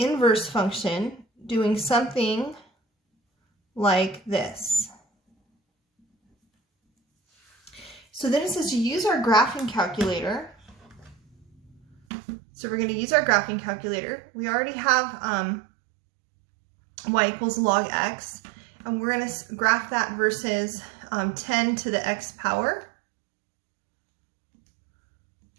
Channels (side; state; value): left; drops out; at 12.0 s